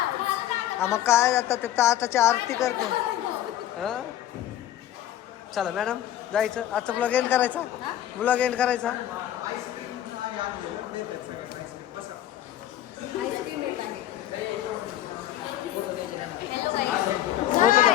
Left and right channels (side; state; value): right; quieter; 12.3 dB